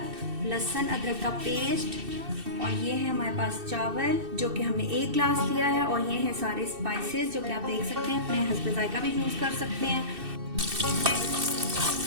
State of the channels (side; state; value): left; late; 2.6 ms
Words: लहसुन अदरक का पेस्ट, और ये है हमारे पास चावल जो कि हमने 1 गिलास लिया है, और ये हैं सारे स्पाइसेस जो कि आप देख सकते हैं, अपने हस्ब जायका भी यूज़ कर सकते हैं।